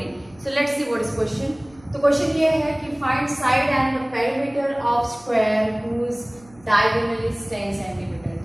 So let's see what is question. तो question ये है कि find side and the perimeter of square whose diagonal is 10 cm.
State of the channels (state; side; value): noise; right; hum, 27 dB below the sound